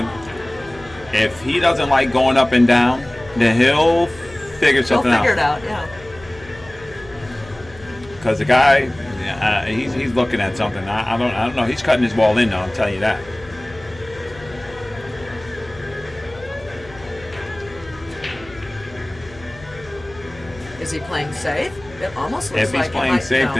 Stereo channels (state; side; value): noise; left; hum, 20 dB below the sound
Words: If he doesn't like going up and down, then he'll figure something out. He'll figure it out, yeah. Because the guy, he's looking at something. I don't know. He's cutting his ball in, though. I'll tell you that. Is he playing safe? It almost looks if he's like playing safe,